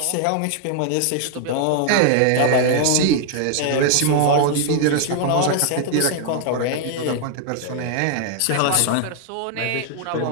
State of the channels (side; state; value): both; different; correlation 0.00